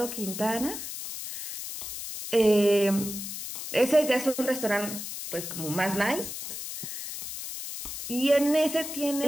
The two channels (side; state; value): left; noise; hiss, 7 dB below the sound